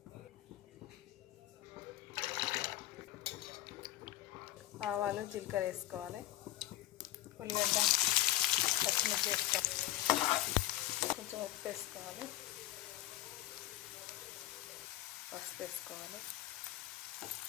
ఆవాలు జీలకర్ర వేసుకోవాలి, ఉల్లిగడ్డ పచ్చిమిర్చి వేసుకోవాలి, కొంచెం ఉప్పు వేసుకోవాలి, పసుపు వేసుకోవాలి.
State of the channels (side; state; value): right; quieter; 15.0 dB